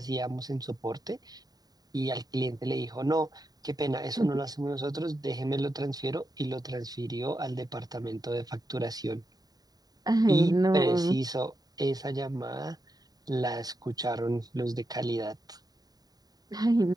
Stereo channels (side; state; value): left; late; 0.18 ms